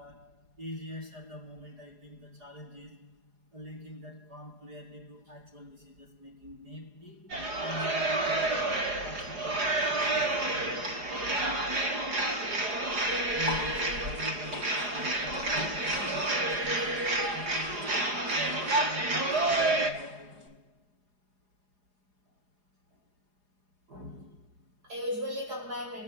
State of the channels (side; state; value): left; late; 4.8 ms